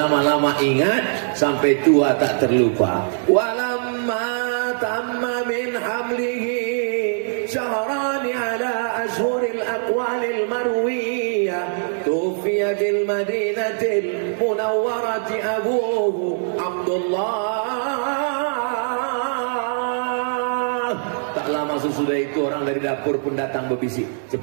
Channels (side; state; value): left; silent; digital silence